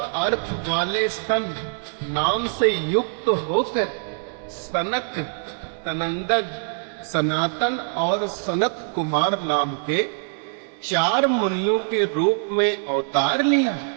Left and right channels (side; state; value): left; silent; digital silence